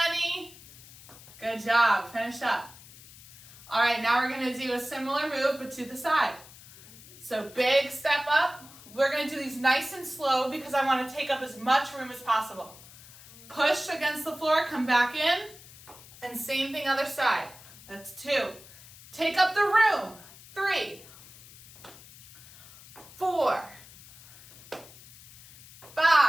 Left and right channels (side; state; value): left; noise; hiss, 20 dB below the sound